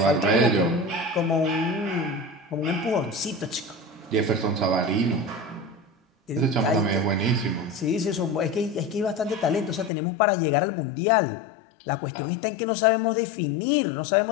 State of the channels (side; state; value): right; drops out; at 9.9 s